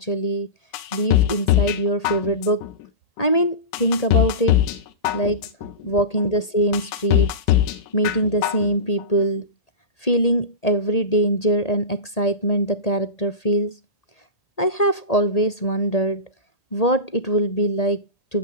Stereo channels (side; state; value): right; late; 1.8 ms